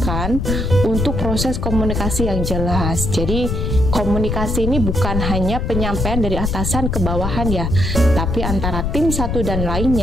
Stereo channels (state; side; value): noise; left; rumble, 1 dB below the sound